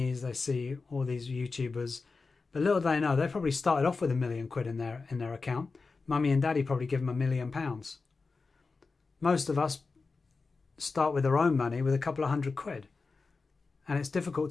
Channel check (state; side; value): quieter; right; 4.2 dB